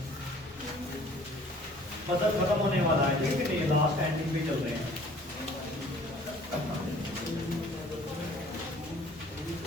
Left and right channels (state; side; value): normal; both; correlation 0.53